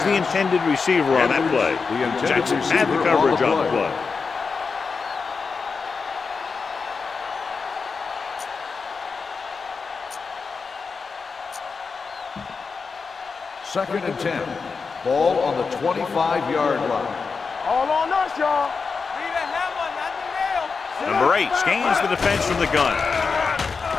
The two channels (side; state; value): right; quieter; 5.0 dB